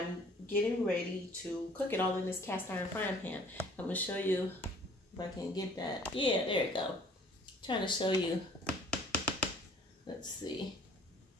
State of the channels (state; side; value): normal; both; correlation 0.54